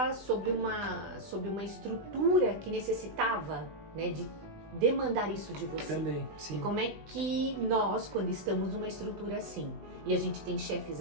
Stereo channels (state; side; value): late; left; 20 ms